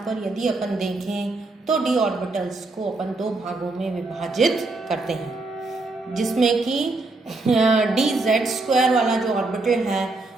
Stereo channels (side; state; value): left; quieter; 3.3 dB